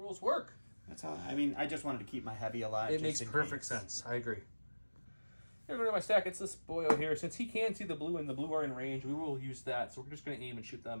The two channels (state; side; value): inverted; both; correlation -1.00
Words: work. That's how... I mean, I just wanted to keep my heavy alive. It makes perfect sense. I agree. Here, go to my stack. It's this boyo here. Since he can see the blue and the blue are in range, we will use that. So we're just going to aim and shoot them